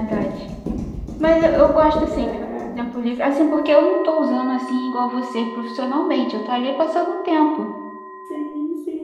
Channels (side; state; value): both; identical; correlation 1.00